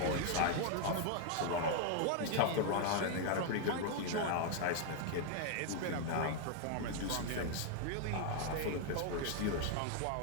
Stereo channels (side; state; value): both; different; correlation 0.00